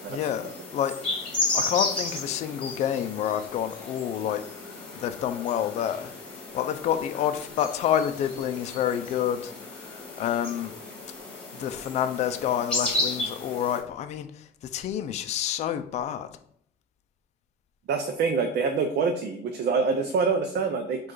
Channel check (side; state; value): right; quieter; 3.5 dB